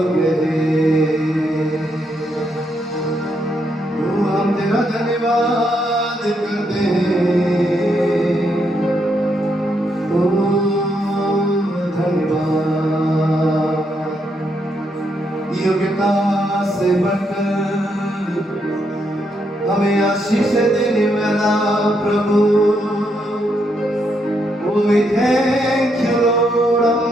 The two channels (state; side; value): normal; both; correlation 0.78